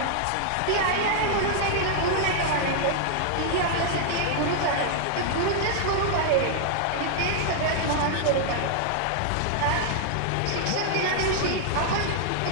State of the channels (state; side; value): different; both; correlation -0.01